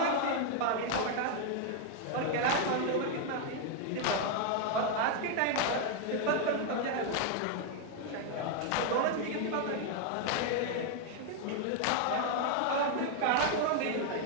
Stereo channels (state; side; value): different; both; correlation 0.00